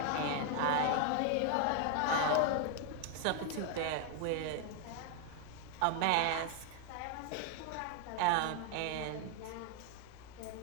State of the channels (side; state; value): both; different; correlation 0.00